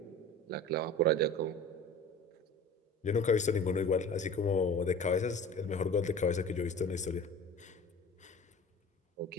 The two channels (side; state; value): both; normal; correlation 0.40